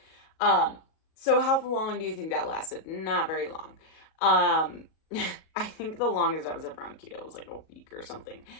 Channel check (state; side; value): late; right; 37 ms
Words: So how long do you think that lasted? Not very long. I think the longest I was ever on keto was like a week or something.